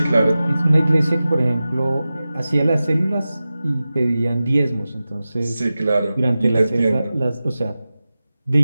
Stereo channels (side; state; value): both; inverted; correlation -0.95